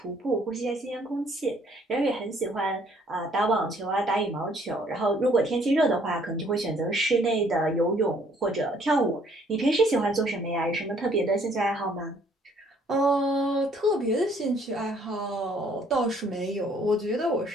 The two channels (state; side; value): normal; both; correlation 0.62